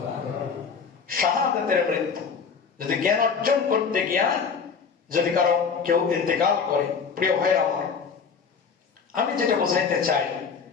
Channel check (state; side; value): quieter; right; 6.0 dB